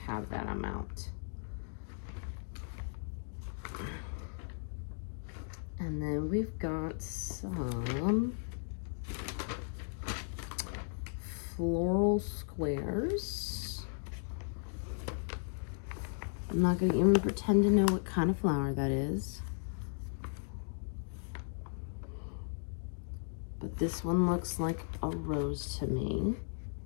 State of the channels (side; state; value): right; silent; digital silence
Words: have that amount. And then we've got some floral squares. I'm not going to even pretend to know what kind of flower that is. But this one looks like a rose to me.